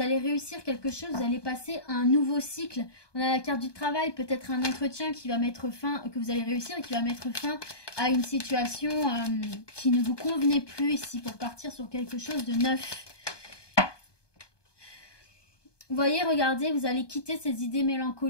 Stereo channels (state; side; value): late; right; 1.2 ms